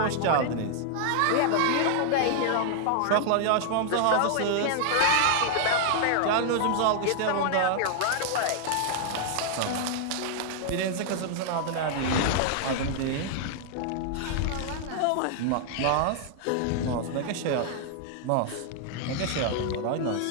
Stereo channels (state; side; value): different; both; correlation -0.01